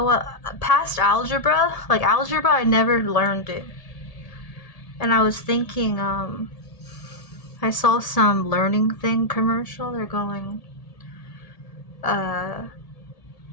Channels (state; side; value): late; right; 1.8 ms